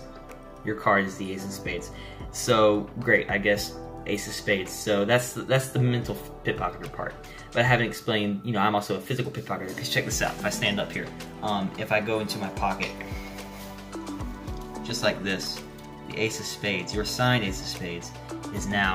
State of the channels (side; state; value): both; identical; correlation 1.00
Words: Your card is the ace of spades. So great, I guess ace of spades. So that's the mental pickpocketer part. But I haven't explained, you know, I'm also a physical pickpocketer. Because check this out. If I stand up here, if I go into my pocket, just like this, the ace of spades, your signed ace of spades, is